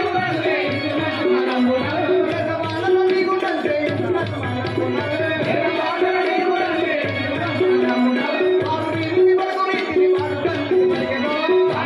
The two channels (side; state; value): both; identical; correlation 1.00